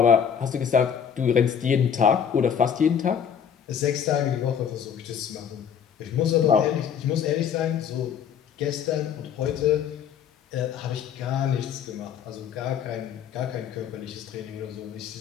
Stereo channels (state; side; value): quieter; right; 8.0 dB